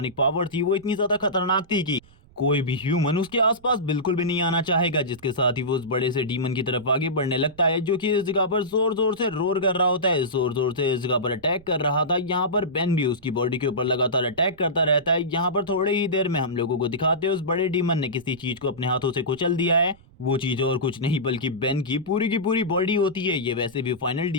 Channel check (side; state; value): right; noise; rumble, 27 dB below the sound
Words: पावर थी वो इतनी ज्यादा खतरनाक थी कि कोई भी ह्यूमन उसके आसपास बिल्कुल भी नहीं आना चाहेगा। जिसके साथ ही वो उस बड़े से डीमन की तरफ आगे बढ़ने लगता है, जो कि इस जगह पर जोर जोर से रोर कर रहा होता है, जोर जोर से इस जगह पर अटैक कर रहा था। यहाँ पर बेन भी उसकी बॉडी के ऊपर लगातार अटैक करता रहता है। यहाँ पर थोड़े ही देर में हम लोगों को दिखाते हैं उस बड़े डीमन ने किसी चीज को अपने हाथों से कुचल दिया है। वो चीज और कुछ नहीं बल्कि बेन की पूरी बॉडी होती है। ये वैसे भी फाइनल